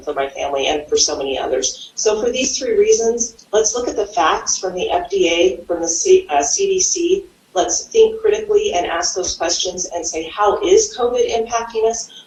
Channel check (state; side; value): identical; both; correlation 1.00